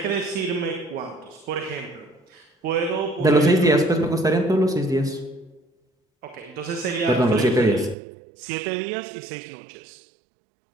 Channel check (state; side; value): drops out; left; at 8.0 s